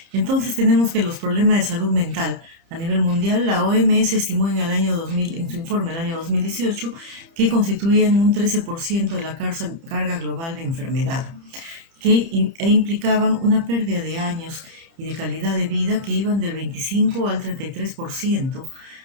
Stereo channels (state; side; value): late; left; 30 ms